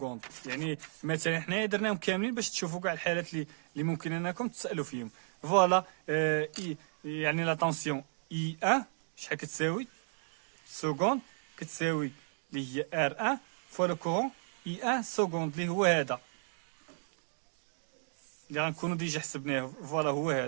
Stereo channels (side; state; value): left; silent; digital silence